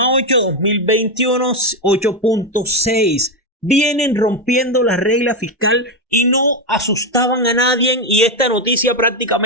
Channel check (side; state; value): both; normal; correlation 0.08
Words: 2021 8,6. Vienen rompiendo la regla fiscal y no asustaban a nadie, y esta noticia